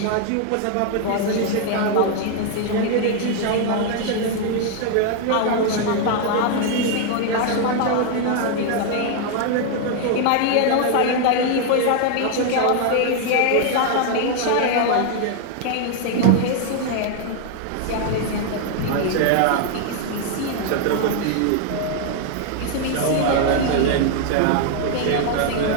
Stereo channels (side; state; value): both; different; correlation 0.00